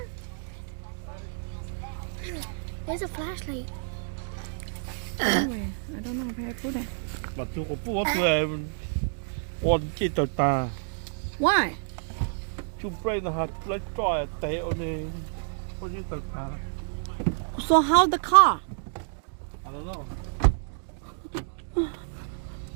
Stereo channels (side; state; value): left; silent; digital silence